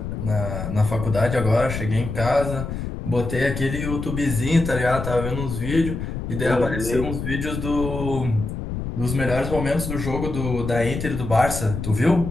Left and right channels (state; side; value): noise; left; rumble, 5 dB below the sound